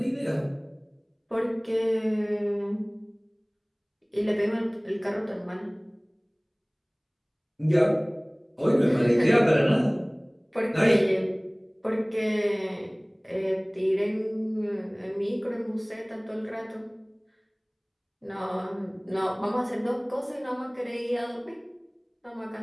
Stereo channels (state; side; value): identical; both; correlation 1.00